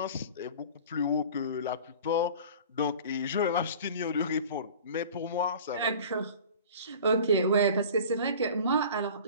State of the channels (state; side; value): inverted; both; correlation -0.41